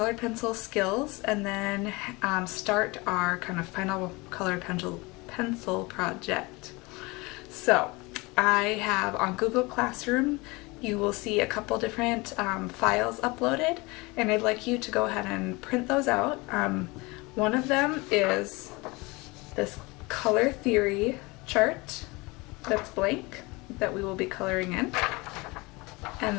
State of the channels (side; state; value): right; quieter; 24.6 dB